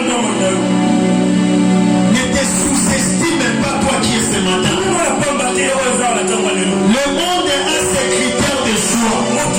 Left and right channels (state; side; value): identical; both; correlation 1.00